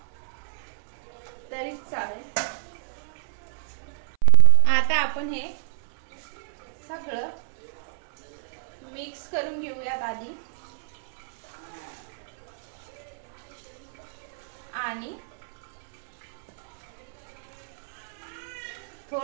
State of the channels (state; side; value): silent; left; 59 dB below the other